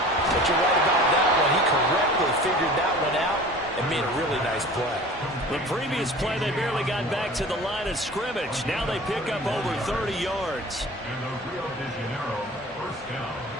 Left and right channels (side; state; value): both; normal; correlation 0.41